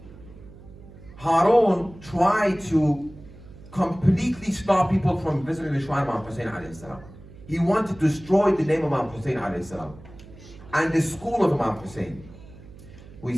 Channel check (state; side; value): noise; right; hum, 19 dB below the sound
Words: Harun tried to completely stop people from visiting the shrine of Imam Hussein alayhi salam. He wanted to destroy the name of Imam Hussein alayhi salam and the school of Imam Hussein. We